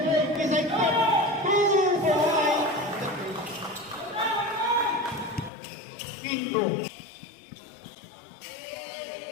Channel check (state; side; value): drops out; right; at 5.5 s